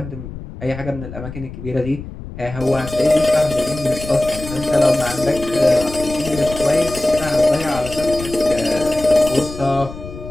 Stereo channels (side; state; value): left; noise; rumble, 12 dB below the sound